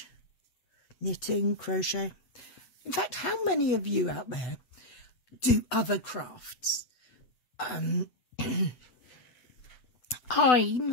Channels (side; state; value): right; late; 8.0 ms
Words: knitting, crochet. In fact, how many of you out there do other crafts? I